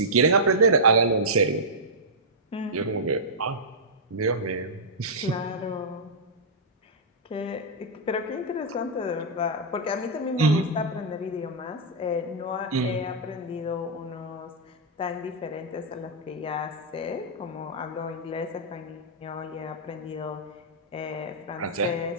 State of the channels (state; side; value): normal; both; correlation -0.12